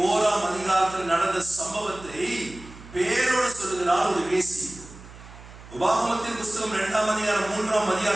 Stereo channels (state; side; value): noise; right; hum, 18 dB below the sound